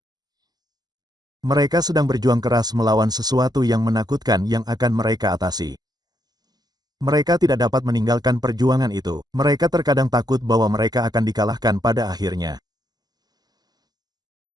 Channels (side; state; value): left; late; 0.20 ms